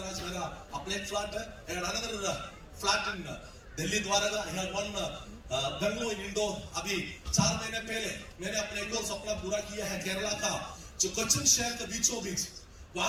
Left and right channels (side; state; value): both; identical; correlation 1.00